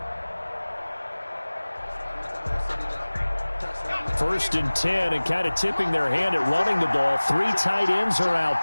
First and 10, and kind of tipping their hand at running the ball. 3 tight ends are out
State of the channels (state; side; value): inverted; both; correlation -1.00